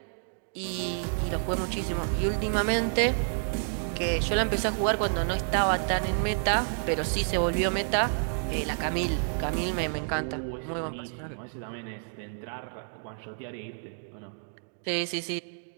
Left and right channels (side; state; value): left; silent; 58 dB below the other